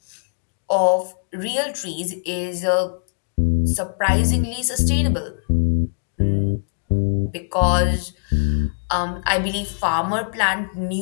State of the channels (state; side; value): silent; right; digital silence